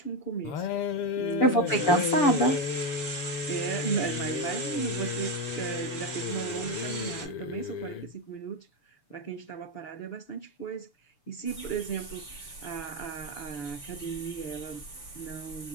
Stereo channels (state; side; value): late; right; 6.9 ms